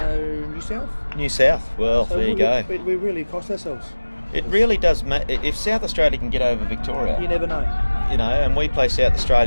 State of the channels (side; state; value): both; inverted; correlation -1.00